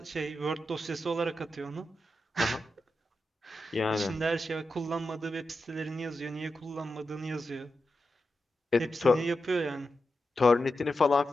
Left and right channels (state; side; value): normal; both; correlation 0.89